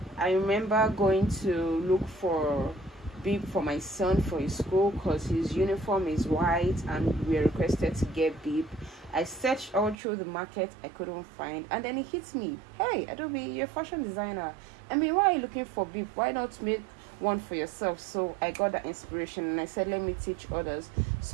remember going to look for beep for my son for his school because his uniform is white and we are requested to get beep. I searched all through the market, I couldn't find, and then it hits me, hey Adobe, you're a fashion designer, I mean, why are you looking for beep? Why not make one for yourself? So I got that inspiration and I said, let me teach others.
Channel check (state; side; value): drops out; left; at 10.0 s